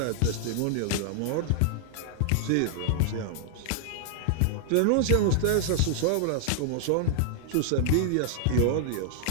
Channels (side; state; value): both; different; correlation 0.00